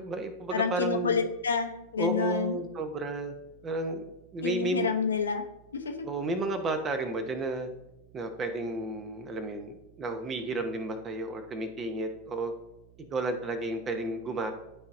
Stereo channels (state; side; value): noise; right; hum, 24 dB below the sound